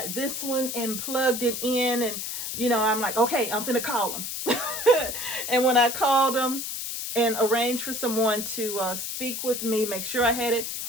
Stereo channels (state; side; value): noise; left; hiss, 5 dB below the sound